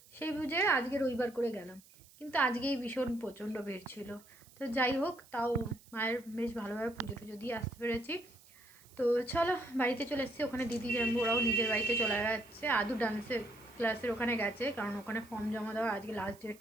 সেই বুঝে আজকে রবিবার করে গেলাম। কিন্তু আজকেই ভীষণ প্রচণ্ড ভিড় ছিল। তো যাই হোক, তাও মায়ের বেশ ভালোভাবে পুজো টুজো দিয়ে আসতে পেরেছি। তো চলো বাড়িতে চলে এসেছি। ওখানে দিদি জানবো ওরাও নিজের বাড়িতে চলে যাচ্ছে। আদু ডান্সের ক্লাসের ওখানে গেছে, কারণ ওখানে ফর্ম জমা দেওয়ার আজকে লাস্ট ডেট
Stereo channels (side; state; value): right; noise; hiss, 25 dB below the sound